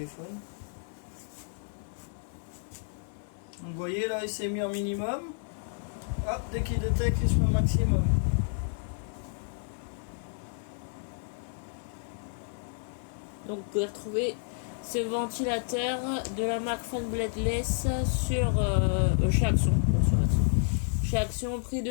Donc vous voyez là il s'est mis en minimum. Hop, dès qu'il détecte il se met au maximum. Donc vous pouvez retrouver ce ventilateur de la marque Fan Bladeless sur chez Action. Chez Action, prix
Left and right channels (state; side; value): silent; right; 55 dB below the other